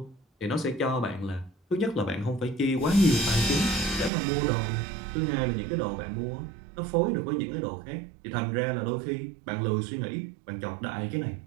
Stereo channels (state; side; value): drops out; left; at 4.1 s